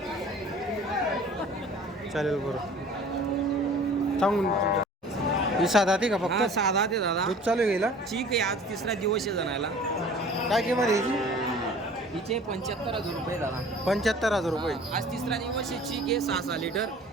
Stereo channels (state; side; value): normal; both; correlation 0.47